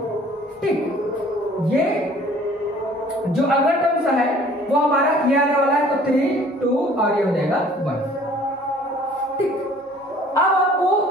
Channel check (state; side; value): normal; both; correlation 0.53